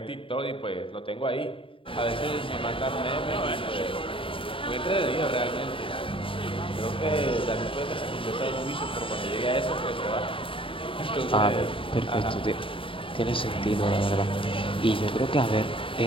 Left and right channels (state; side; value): late; right; 0.25 ms